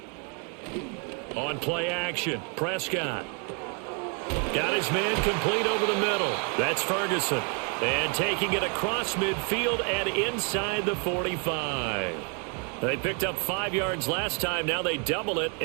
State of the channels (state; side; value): quieter; left; 37.4 dB